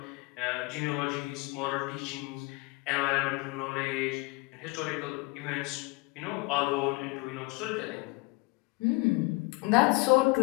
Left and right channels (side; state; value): right; quieter; 26.0 dB